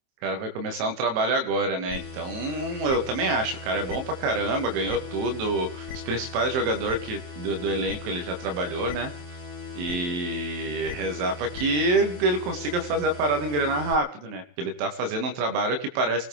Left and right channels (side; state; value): left; late; 23 ms